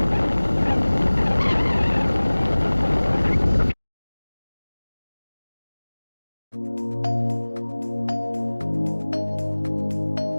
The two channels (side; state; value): both; inverted; correlation -1.00